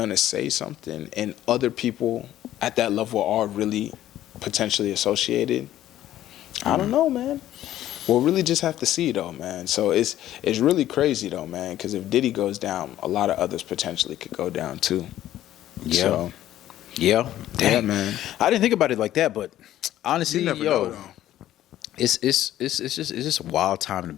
say something, and other people at that level are really potentially associated, I don't know, man. We'll really just have to see, though, man. So it's really crazy, though, man, because if Diddy goes down, a lot of others potentially could go down too. Yeah. So, yeah. Dang. Yeah, man. I didn't think about it like that, but honestly, You never know, though. it's just a wild time to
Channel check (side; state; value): right; quieter; 13.0 dB